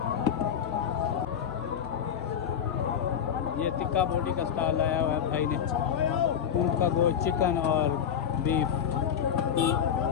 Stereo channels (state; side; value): quieter; right; 8.3 dB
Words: ये टिक्का बोटी का स्टॉल लाया हुआ है भाई ने, ऊँट का गोश्त, चिकन और बीफ।